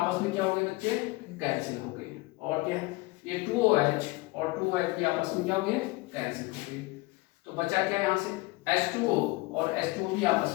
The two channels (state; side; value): quieter; right; 22.4 dB